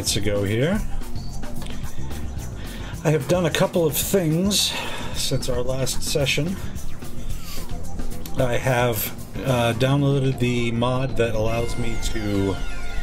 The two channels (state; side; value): identical; both; correlation 1.00